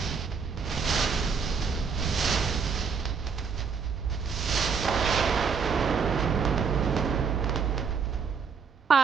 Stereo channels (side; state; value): left; quieter; 5.9 dB